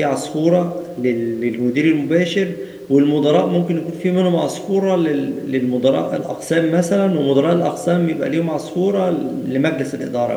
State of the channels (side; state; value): both; identical; correlation 1.00